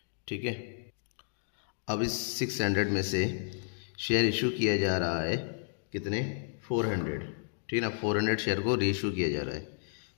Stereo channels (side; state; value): right; silent; digital silence